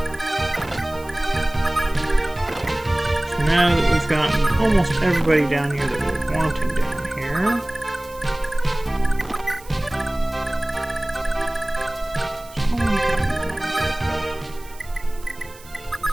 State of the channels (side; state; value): right; noise; hiss, 21 dB below the sound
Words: Now that we've gotten almost everybody down here that we're wanting down here.